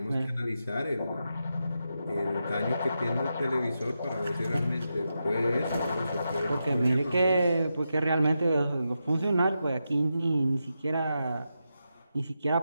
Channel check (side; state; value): both; inverted; correlation -0.87